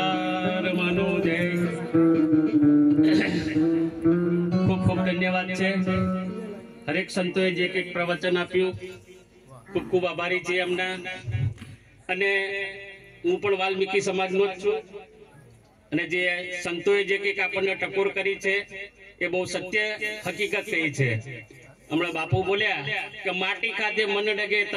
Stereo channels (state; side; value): identical; both; correlation 1.00